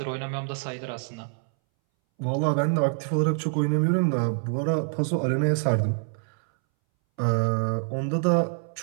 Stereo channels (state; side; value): silent; left; 61 dB below the other